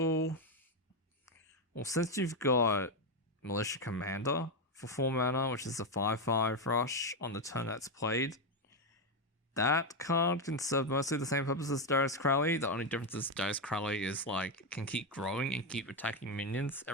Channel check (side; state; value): both; normal; correlation 0.08